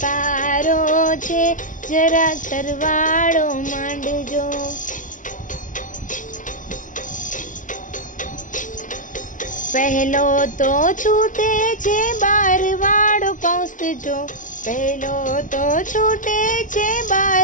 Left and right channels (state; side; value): late; right; 0.37 ms